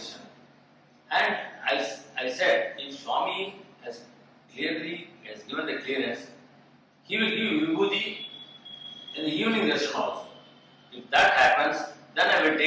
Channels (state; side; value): identical; both; correlation 1.00